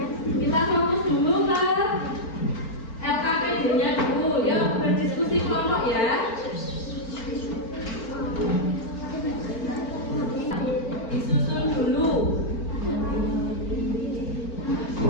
Kita fokus dulu ke LKPD-nya dulu. Yuk berdiskusi kelompok ya. Disusun dulu.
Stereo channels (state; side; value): late; right; 4.4 ms